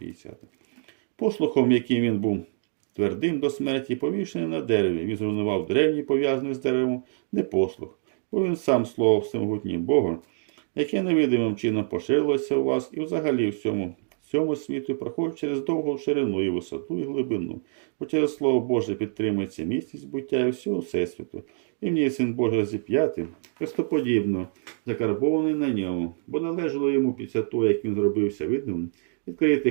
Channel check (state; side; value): silent; left; 61 dB below the other